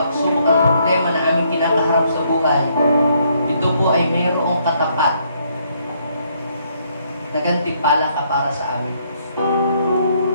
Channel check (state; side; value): inverted; both; correlation -0.70